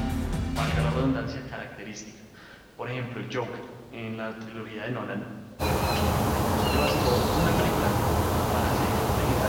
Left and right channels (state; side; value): identical; both; correlation 1.00